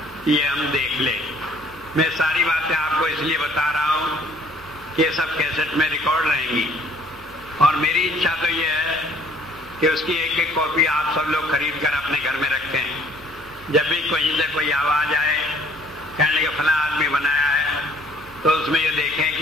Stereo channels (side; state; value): both; normal; correlation 0.58